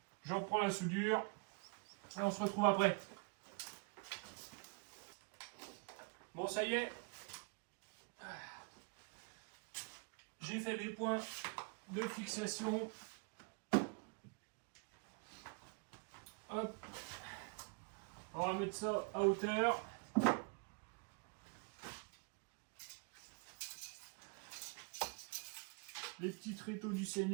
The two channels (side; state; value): left; quieter; 33.6 dB